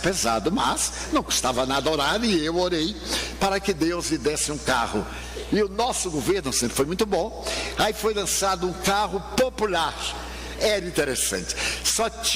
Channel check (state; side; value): identical; both; correlation 1.00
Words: mas não custava nada orar, e eu orei para que Deus lhe desse um carro. E o nosso governo sempre foi muito bom. Aí foi lançado um carro popular. Era interessante. Só